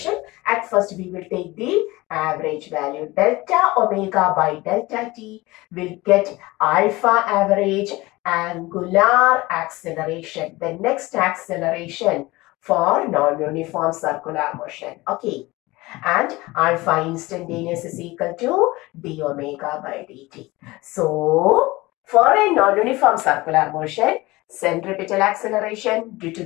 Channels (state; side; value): quieter; right; 20.8 dB